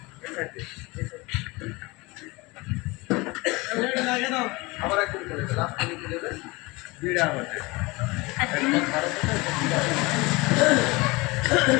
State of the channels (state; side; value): quieter; right; 24.0 dB